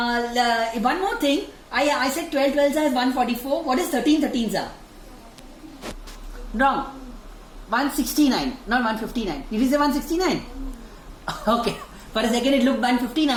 more thing. I said 12 12s are 144. What is 13 13s are? Wrong. 169, not 159. Did you say 169? Okay. For a second it looked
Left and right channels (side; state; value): both; identical; correlation 1.00